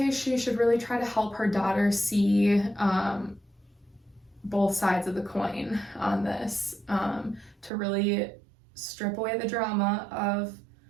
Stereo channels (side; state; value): left; drops out; at 7.7 s